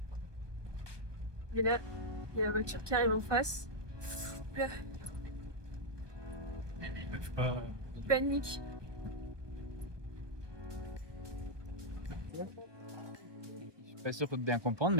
Et là, il y a la voiture qui arrive en face. Là. Ils peuvent pas. Ils paniquent. Je suis pas sûr de bien comprendre,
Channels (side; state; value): left; late; 1.1 ms